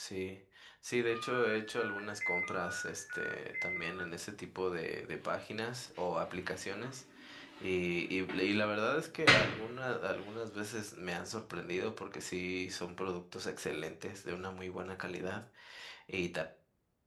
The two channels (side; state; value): both; identical; correlation 1.00